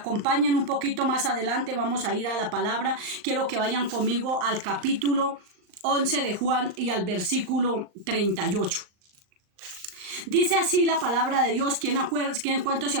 un poquito más adelante, vamos a ir a la palabra. Quiero que vayan conmigo al capítulo 11 de Juan y al versículo 38. Dice así la palabra de Dios. ¿Cuántos se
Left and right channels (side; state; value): left; late; 39 ms